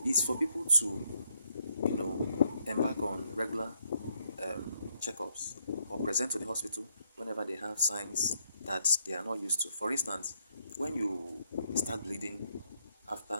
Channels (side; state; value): both; inverted; correlation -0.74